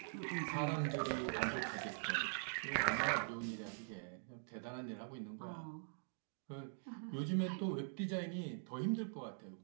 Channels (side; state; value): left; silent; digital silence